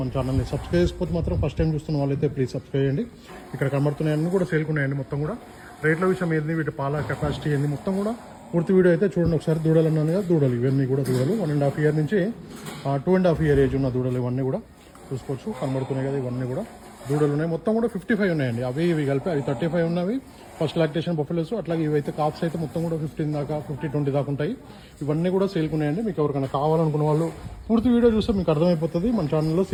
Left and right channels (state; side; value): identical; both; correlation 1.00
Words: మన ఛానల్ని సబ్స్క్రైబ్ చేసుకోవచ్చు. మాత్రం ఫస్ట్ టైం చూస్తున్న వాళ్ళైతే ప్లీజ్ సబ్స్క్రైబ్ చేయండి. ఇక్కడ కనబడుతున్నాయన్నీ కూడా సేల్కున్నాయండి. మొత్తం కూడా రేట్ల విషయం ఏంది, వీటి పాల కెపాసిటీ ఏంది, మొత్తం కూడా పూర్తి వీడియో అయితే చూడండి ఒకసారి. దూడలు అన్నాను కదా, దూడలు ఇవన్నీ కూడా దూడలు 1.5 year నుంచి 2.5 year ఏజ్ ఉన్న దూడలు ఇవన్నీ కూడా చూసుకోవచ్చు. కనబడుతున్నాయి కదా, ఇవన్నీ కూడా దూడలు ఉన్నాయి. మొత్తం కూడా 55 ఉన్నాయండి. అవి ఇవి కలిపి అవి 35 ఉన్నవి ఫస్ట్ లాక్టేషన్ బఫెలోస్. అట్లాగే ఇవైతే కాప్స్ అయితే మొత్తం కూడా 15 దాకా 50-20 దాకా ఉంటాయి. ఇవన్నీ కూడా సేల్కున్నాయండి. మీకు ఎవరికైనా కావాలనుకున్న వాళ్ళు పూర్తి వీడియో చూస్తే మీకు అర్థమైపోతుంది. మన ఛానల్లో